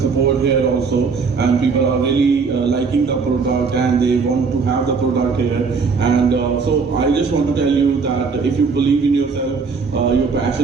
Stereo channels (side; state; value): left; quieter; 5.0 dB